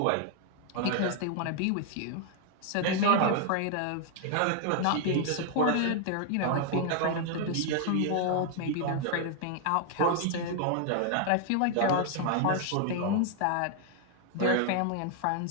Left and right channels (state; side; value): different; both; correlation 0.00